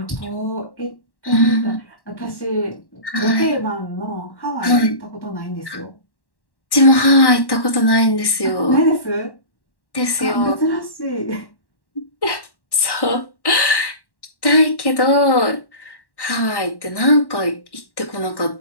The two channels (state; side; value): late; right; 1.1 ms